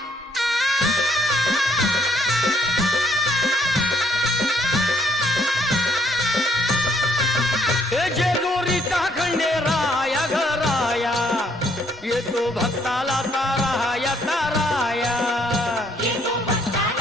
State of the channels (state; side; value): normal; both; correlation 0.68